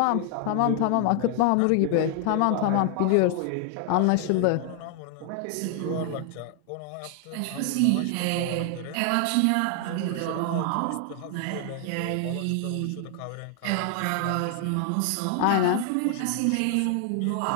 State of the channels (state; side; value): different; both; correlation 0.00